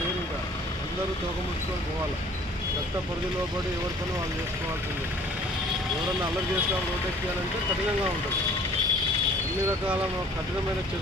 లేరు. ఇంకా అందరూ తోకముట్టుకొని పోవాలి. చట్ట పరిధిలో పడి ఎవరి పని వాళ్ళు చేసుకోవాల్సిందే. ఎవరన్నా అల్లరి చేస్తాం రోడ్డు ఎక్కాలంటే కఠినంగా ఉంటుంది. అన్ని రకాల కఠినమైన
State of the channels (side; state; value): both; normal; correlation 0.53